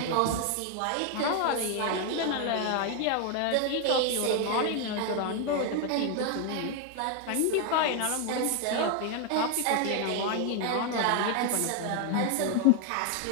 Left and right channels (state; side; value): different; both; correlation 0.01